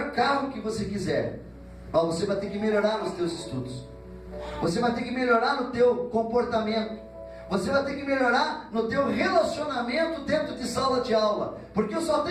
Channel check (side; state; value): both; identical; correlation 1.00